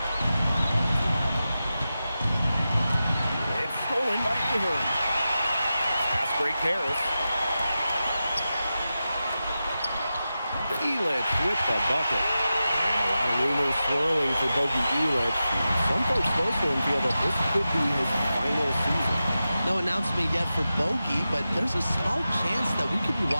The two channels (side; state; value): both; inverted; correlation -0.92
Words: It's stolen by Ahern. Pass break Harris. Elich with the bucket. And a lot of rumors swirling for Bogey Elich. Some folks close to him feel that this could be his final season. No announcement yet for Bogey, but there's a small chance that we could be